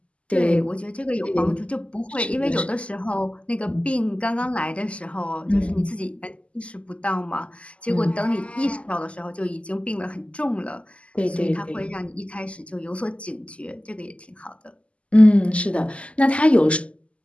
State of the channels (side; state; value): right; late; 0.059 ms